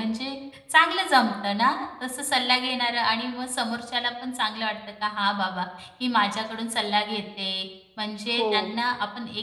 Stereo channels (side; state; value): both; identical; correlation 1.00